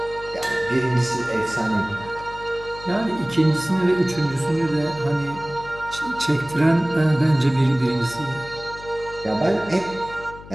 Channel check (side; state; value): left; noise; hum, 17 dB below the sound